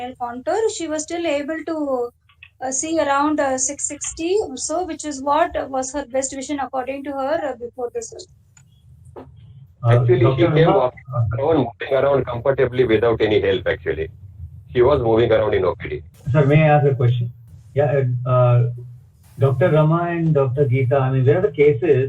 contour, she was still able to see around 660 or so, which is what was her best vision according to her before the surgery. Actually, she came moving around comfortably without any help, actually. She was moving around in OPD. Sir, may I ask a question? Yeah, Dr. Rama and Dr. Geeta, I mean, where are the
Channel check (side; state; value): both; identical; correlation 1.00